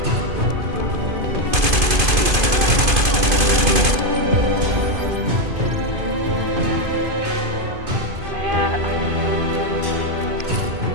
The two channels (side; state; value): left; late; 2.5 ms